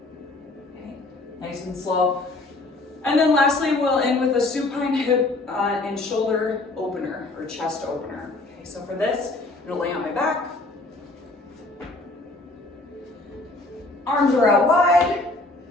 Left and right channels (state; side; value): quieter; right; 3.0 dB